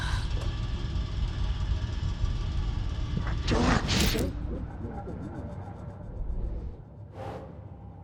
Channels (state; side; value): identical; both; correlation 1.00